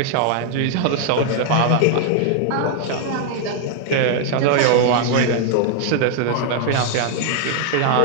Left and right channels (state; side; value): different; both; correlation 0.00